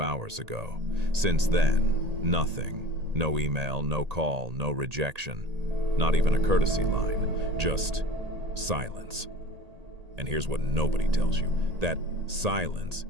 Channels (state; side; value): late; left; 1.8 ms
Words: ago. Since then, nothing. No email, no call, no rejection. Not even a courtesy line. Just silence. And here's what nobody tells you. That silence